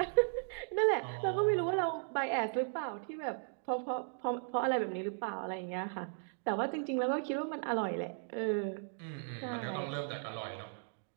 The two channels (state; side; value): silent; left; digital silence